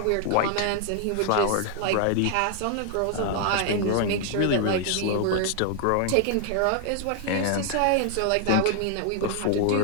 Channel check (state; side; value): different; both; correlation 0.00